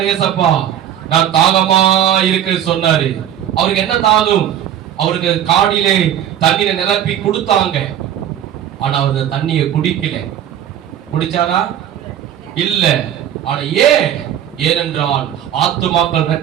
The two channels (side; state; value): left; quieter; 10.4 dB